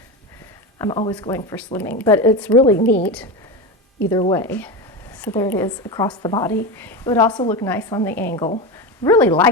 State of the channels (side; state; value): both; normal; correlation 0.19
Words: I'm always going for slimming, but it's really neat either way. So there it is across the body. It would also look nice on the angle. Really